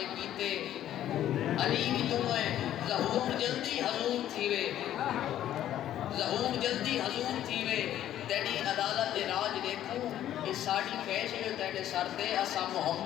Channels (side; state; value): right; quieter; 11.9 dB